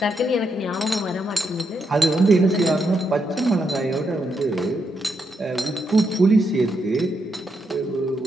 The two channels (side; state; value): both; normal; correlation 0.81